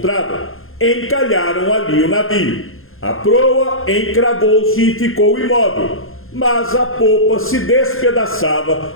encalharam ali o navio. A proa encravou-se e ficou imóvel, mas a popa se despedaçava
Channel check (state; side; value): late; right; 0.60 ms